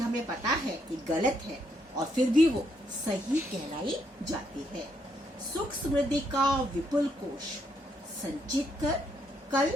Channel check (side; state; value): both; normal; correlation 0.75